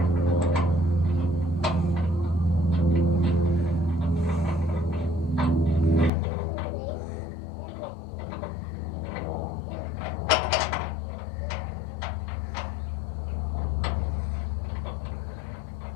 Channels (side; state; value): right; drops out; at 6.1 s